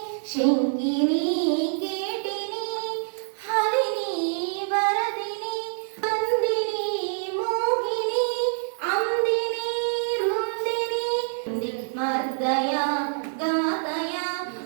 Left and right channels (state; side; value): silent; left; digital silence